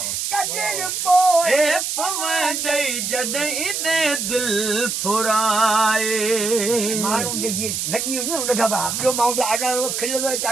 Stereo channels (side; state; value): right; noise; hiss, 2 dB below the sound